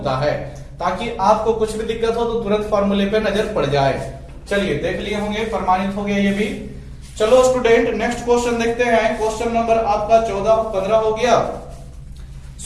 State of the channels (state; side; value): identical; both; correlation 1.00